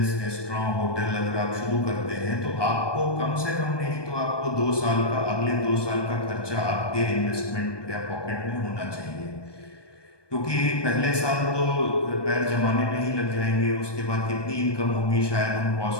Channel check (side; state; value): right; late; 1.2 ms